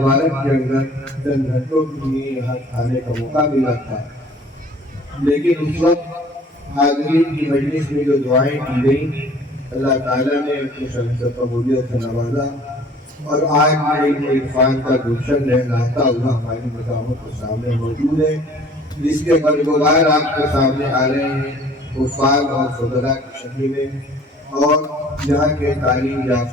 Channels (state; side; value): normal; both; correlation 0.52